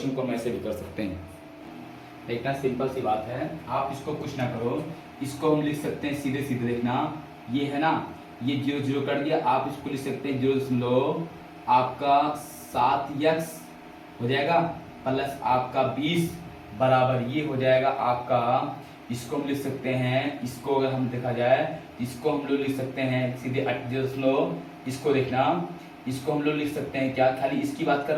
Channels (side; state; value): both; identical; correlation 1.00